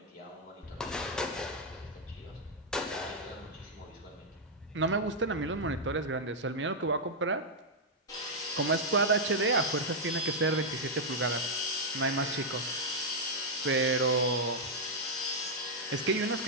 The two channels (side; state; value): both; normal; correlation -0.02